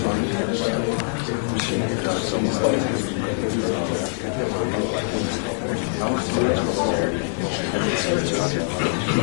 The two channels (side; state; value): right; silent; digital silence